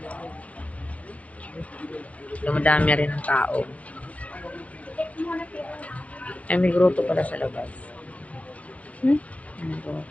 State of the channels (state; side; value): late; right; 0.065 ms